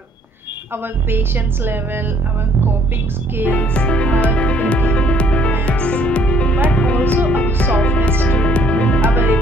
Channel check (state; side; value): normal; both; correlation 0.62